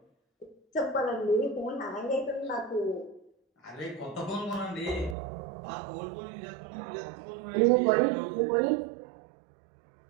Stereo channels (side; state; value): left; drops out; at 5.2 s